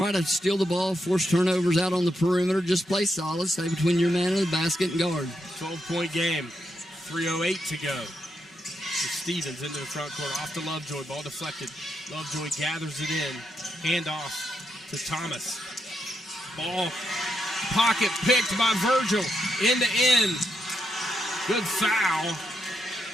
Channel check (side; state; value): both; normal; correlation 0.82